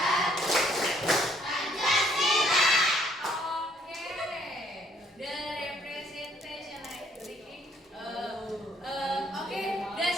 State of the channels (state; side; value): normal; both; correlation 0.64